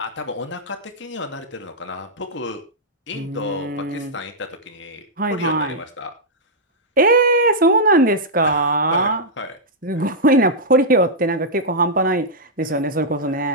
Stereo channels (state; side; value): normal; both; correlation -0.08